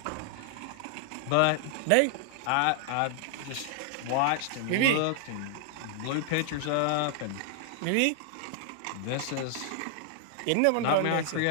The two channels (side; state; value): both; different; correlation 0.00